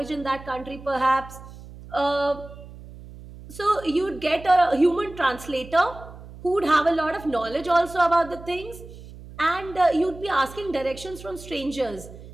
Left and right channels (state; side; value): noise; right; hum, 16 dB below the sound